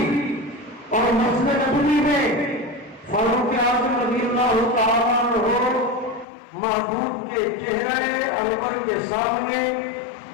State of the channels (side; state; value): right; drops out; at 6.2 s